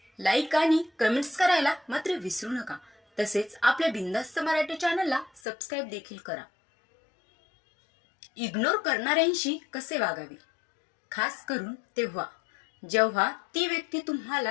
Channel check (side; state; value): right; drops out; at 5.4 s